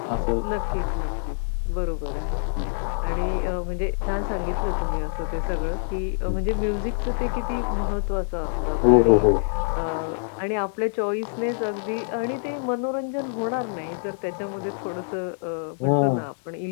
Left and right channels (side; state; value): right; silent; digital silence